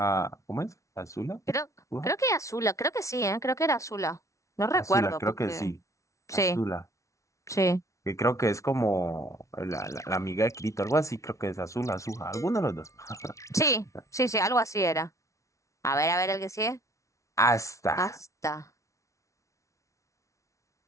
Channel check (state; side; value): late; right; 0.15 ms